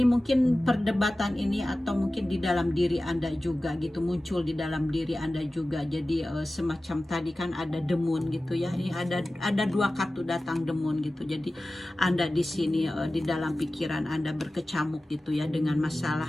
mungkin perdebatan ini, atau mungkin di dalam diri Anda juga gitu, muncul di dalam diri Anda juga. Jadi semacam tadi kan ada demun gitu ya, ini ada 2 kartu datang demun gitu. Jadi Anda di sini di dalam pikiran Anda berkecamuk gitu ya, dengan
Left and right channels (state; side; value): normal; both; correlation 0.96